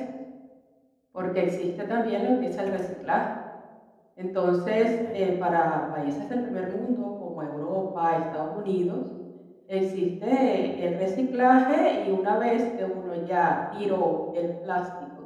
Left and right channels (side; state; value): both; identical; correlation 1.00